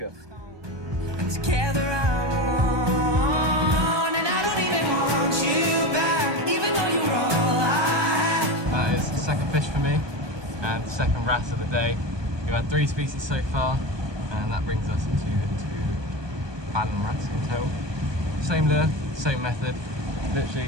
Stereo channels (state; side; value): late; left; 1.2 ms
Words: Together I'm alone, and I don't even want you back, even though you're all I have. That is the second fish for me and the second wrasse of the day. We've had 3 species so far, and that brings us to 2 Fallon wrasse in total. Same lure, same method.